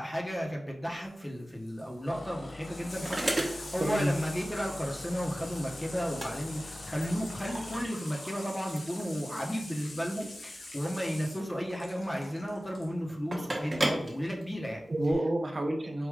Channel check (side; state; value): both; normal; correlation 0.96